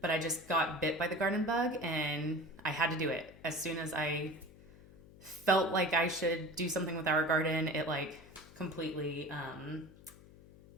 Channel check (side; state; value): left; noise; hum, 21 dB below the sound